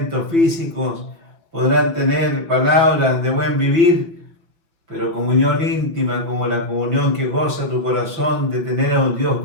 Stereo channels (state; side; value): late; left; 6.0 ms